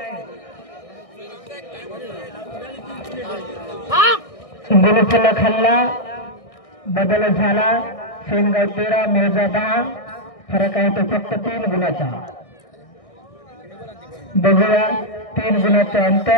गुलफुला खाल्ला, बदल झाला. सेनगाव 13, मोजा 10. फरक आहे तो फक्त 3 गुणाचा. बघूया 3 गुणाचं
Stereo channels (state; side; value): late; right; 1.6 ms